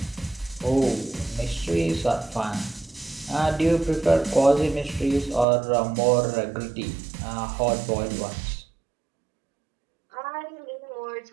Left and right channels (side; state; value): left; drops out; at 5.5 s